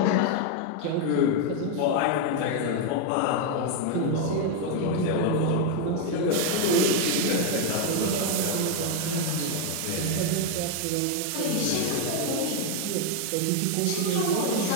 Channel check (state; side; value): different; both; correlation 0.02